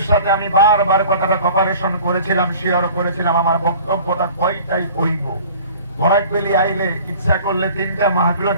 সাথে আমি বারবার কথাটা কপারেশন করেছিলাম, শেয়ার করেছিলাম আমার বক্তব্যটা কয়টাই কইব। বরাকবেলি আইলে ইচ্ছা করলে 3টা মাহফিলও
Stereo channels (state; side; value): inverted; both; correlation -0.46